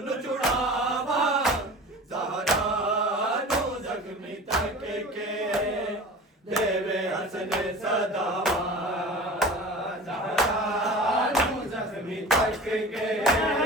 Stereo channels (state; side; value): normal; both; correlation 0.37